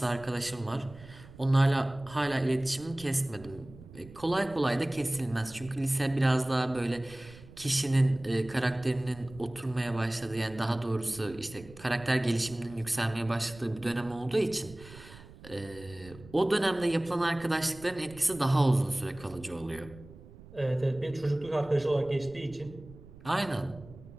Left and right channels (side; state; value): right; noise; rumble, 19 dB below the sound